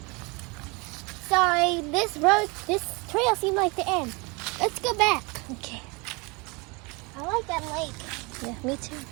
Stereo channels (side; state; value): left; quieter; 28.2 dB